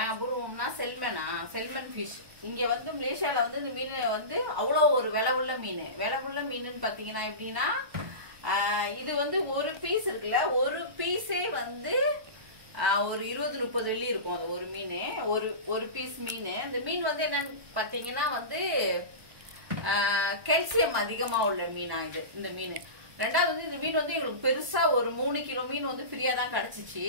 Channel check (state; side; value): late; left; 1.2 ms